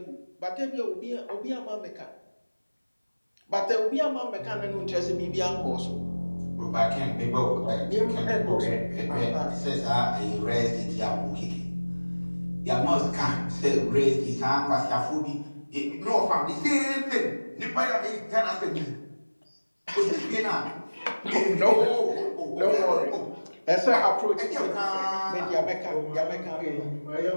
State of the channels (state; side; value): inverted; both; correlation -1.00